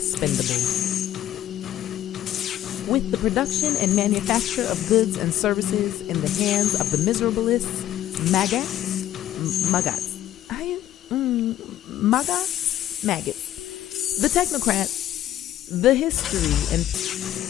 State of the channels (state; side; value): quieter; right; 12.3 dB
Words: With the production and manufacture of goods and services in the hands of the miserabilists, maggots, the technocrats, the